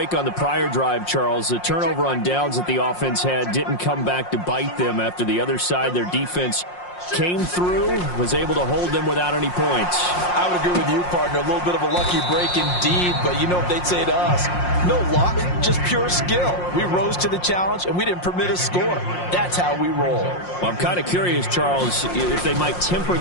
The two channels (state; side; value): late; right; 5.6 ms